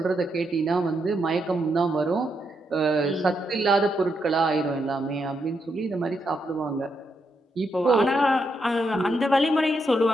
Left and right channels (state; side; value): normal; both; correlation 0.80